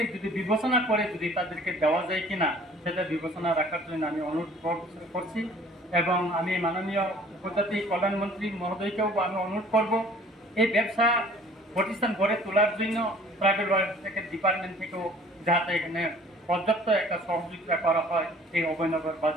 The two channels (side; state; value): both; normal; correlation 0.52